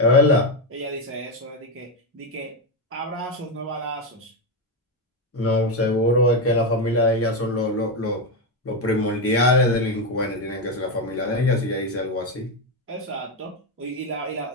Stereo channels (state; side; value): normal; both; correlation 0.09